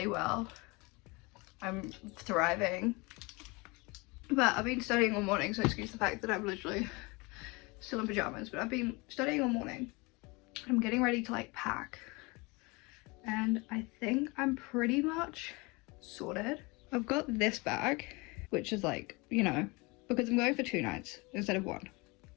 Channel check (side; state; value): right; quieter; 26.3 dB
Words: well. I'm thriving. But I've been studying all morning, so excuse the fact that I'm literally still in pajamas, but I've been studying all morning. I'm getting ready to like pack. And I think I'm pretty much sorted. I've got this bag, which is like, you know, because I'm going for 2 nights instead of 1